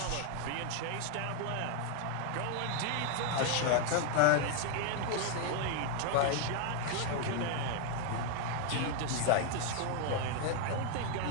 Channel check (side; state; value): both; different; correlation 0.00